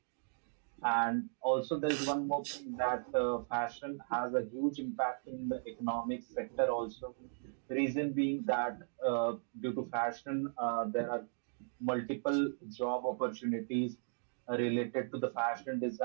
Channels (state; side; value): silent; left; digital silence